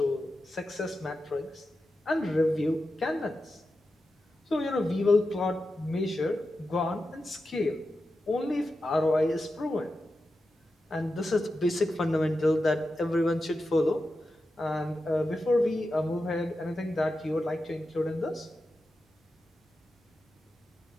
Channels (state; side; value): normal; both; correlation 0.91